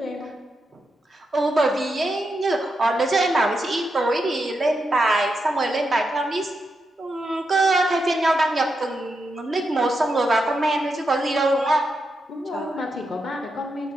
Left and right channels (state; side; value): normal; both; correlation 0.85